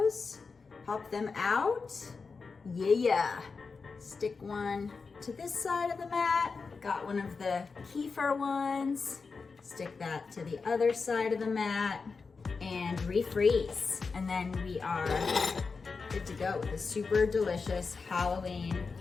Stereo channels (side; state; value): right; quieter; 4.7 dB